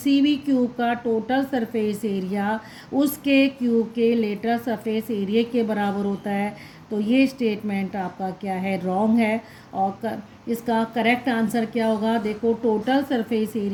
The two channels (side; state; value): both; identical; correlation 1.00